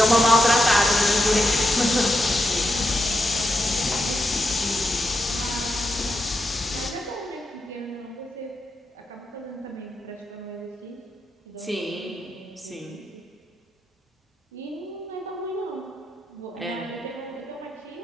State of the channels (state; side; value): normal; both; correlation 0.85